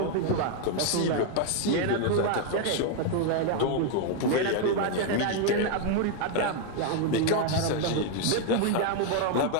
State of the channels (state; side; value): different; both; correlation 0.01